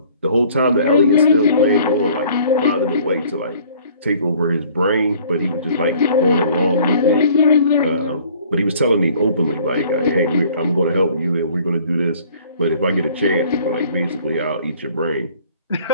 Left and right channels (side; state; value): both; inverted; correlation -0.55